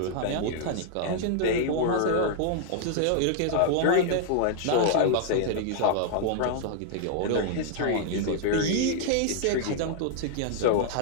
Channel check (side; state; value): both; different; correlation -0.01